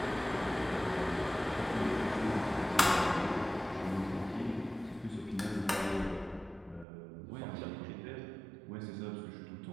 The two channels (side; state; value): left; drops out; at 6.9 s